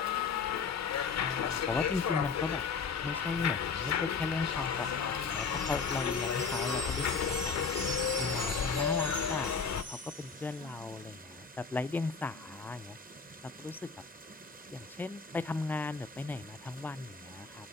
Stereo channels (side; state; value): right; quieter; 5.3 dB